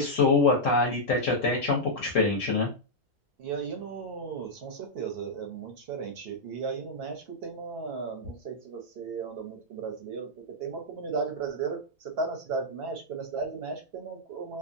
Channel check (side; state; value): both; normal; correlation -0.06